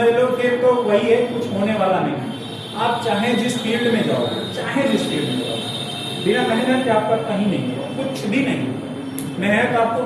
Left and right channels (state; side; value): identical; both; correlation 1.00